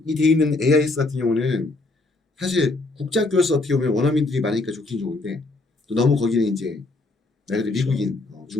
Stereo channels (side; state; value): right; quieter; 3.2 dB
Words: 돼 있는 AIS 같은 경우는 사실 국제학교에서 어떻게 보면 원어민들이 많으니까 좋긴 좋은데 또 너무 거기는 이제 말 그대로 미국인